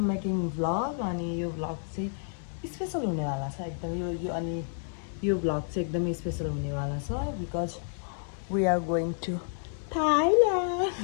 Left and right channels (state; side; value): silent; right; 56 dB below the other